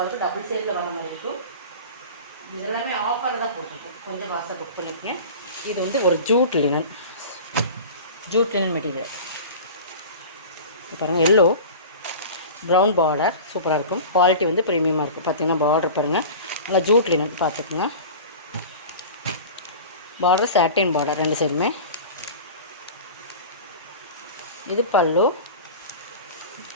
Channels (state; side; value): inverted; both; correlation -0.34